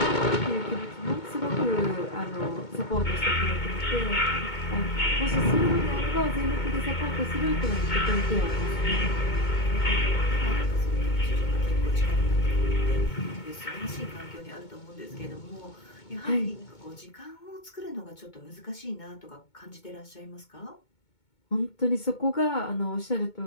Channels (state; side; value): late; right; 2.2 ms